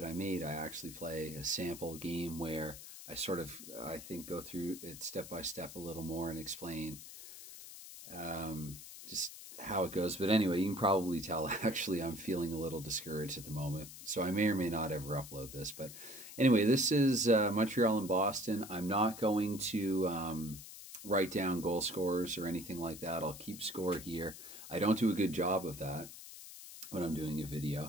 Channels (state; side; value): noise; left; hiss, 13 dB below the sound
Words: I made, I actually play a sample game where I think, go through it step by step a little more and explain just how it goes. But anyway, you can probably tell actually I'm feeling a little discouraged at the moment, so I may or may not ever upload this. But anyway, this is Montreal and Boston. I'm not going to write down goal scorers or anything like that. I'll keep score here. I don't do a good job of that when I'm doing a